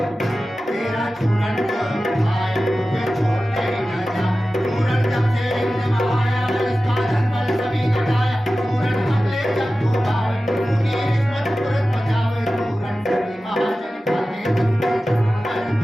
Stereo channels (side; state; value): both; normal; correlation 0.95